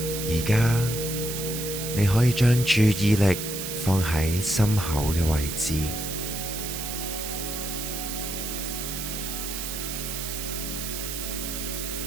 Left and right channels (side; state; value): right; noise; hiss, 5 dB below the sound